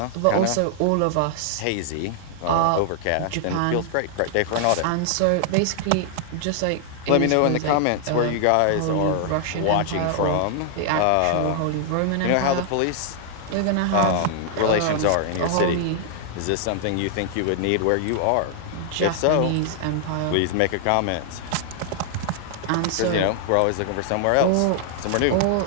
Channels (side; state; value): both; different; correlation -0.01